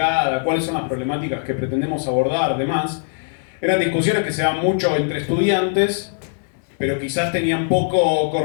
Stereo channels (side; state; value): right; silent; 65 dB below the other